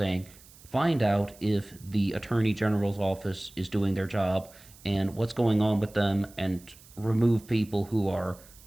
find out if the Attorney General's office is doing their job and what's going on with them, and remove people who are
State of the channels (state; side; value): noise; right; hiss, 23 dB below the sound